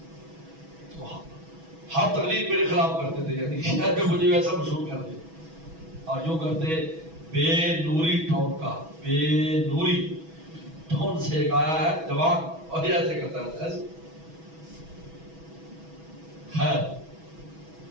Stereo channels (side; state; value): left; late; 6.1 ms